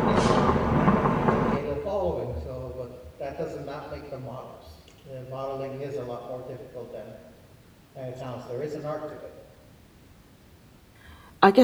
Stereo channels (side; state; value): both; identical; correlation 1.00